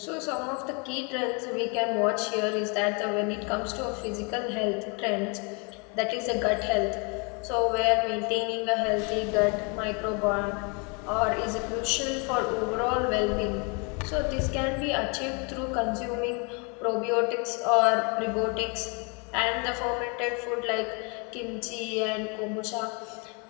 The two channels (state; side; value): quieter; right; 33.5 dB